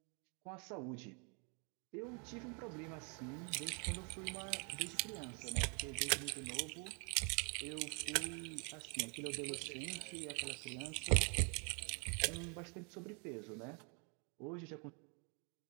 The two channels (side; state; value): left; quieter; 37.0 dB